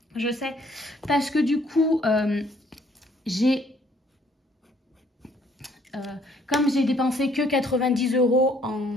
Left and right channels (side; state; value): both; normal; correlation 0.63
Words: je sais. Parce que du coup, comme j'ai dépensé que 90 €